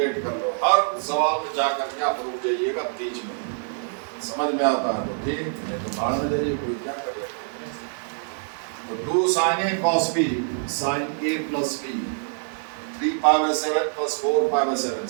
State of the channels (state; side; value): silent; left; 62 dB below the other